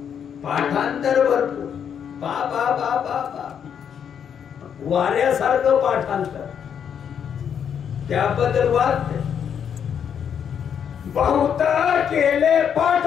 पाठांतर भरपूर बा बा बा बा बा वाऱ्यासारखं पाठांतर त्याबद्दल वाद बहुत केले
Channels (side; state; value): right; quieter; 8.1 dB